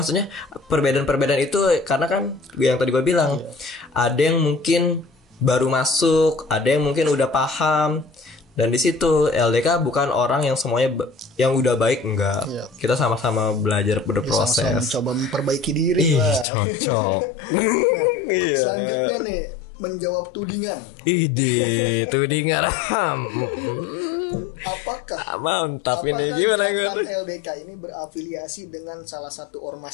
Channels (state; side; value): drops out; right; at 16.4 s